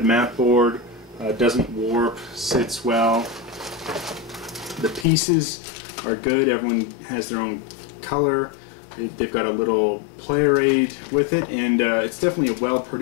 mat board, doesn't warp, sits well. The pieces are good. Everyone has their own color. They've got a little player aid with it, and it's definitely a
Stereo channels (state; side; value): drops out; right; at 5.1 s